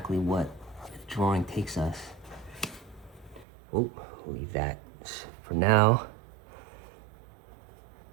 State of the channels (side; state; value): left; drops out; at 3.5 s